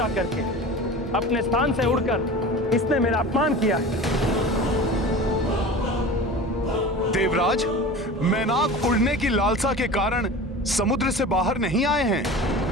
करके अपने स्थान से उड़कर इसने मेरा अपमान किया है। देवराज, मैनाक उड़ने की लालसा के कारण समुद्र से बाहर नहीं आए हैं।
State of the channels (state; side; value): normal; both; correlation 0.35